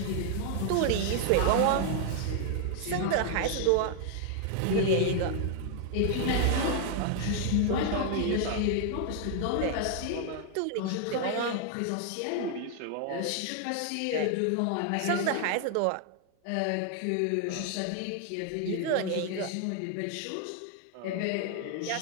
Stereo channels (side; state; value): both; different; correlation 0.00